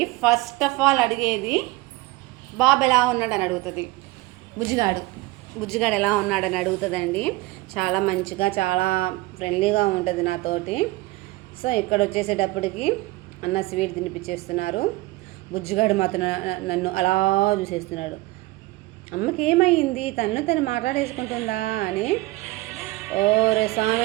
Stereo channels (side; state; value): left; quieter; 20.1 dB